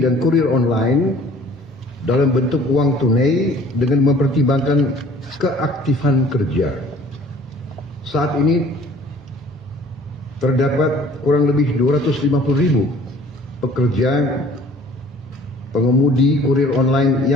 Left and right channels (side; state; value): both; normal; correlation 0.52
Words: dan kurir online dalam bentuk uang tunai dengan mempertimbangkan keaktifan kerja. Saat ini terdapat kurang lebih 250.000 pekerja pengemudi kurir online